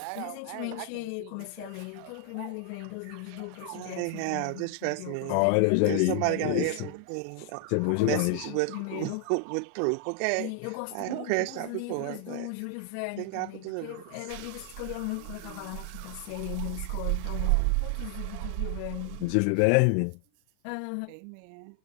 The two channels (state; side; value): different; both; correlation 0.00